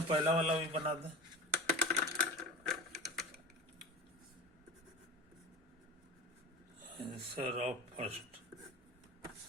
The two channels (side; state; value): both; normal; correlation 0.32